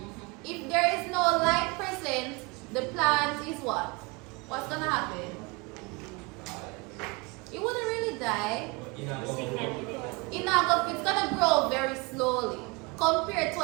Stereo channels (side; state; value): left; quieter; 27.9 dB